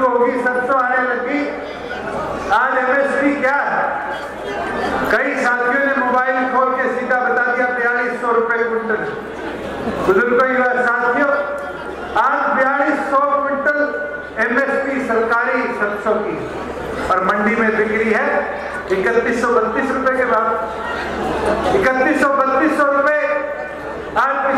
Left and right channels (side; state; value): both; identical; correlation 1.00